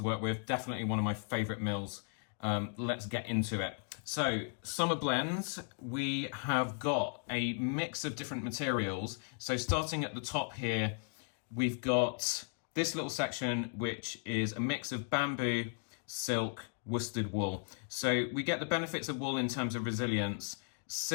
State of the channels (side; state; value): right; silent; 54 dB below the other